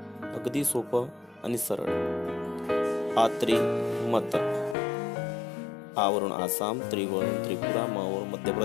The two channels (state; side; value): drops out; right; at 4.8 s